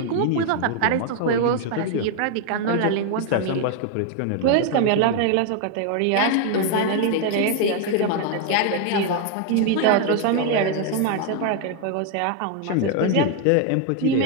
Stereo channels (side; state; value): both; different; correlation 0.01